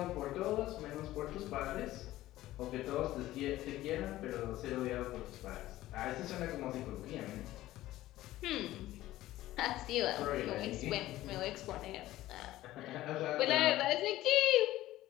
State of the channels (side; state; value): right; quieter; 15.6 dB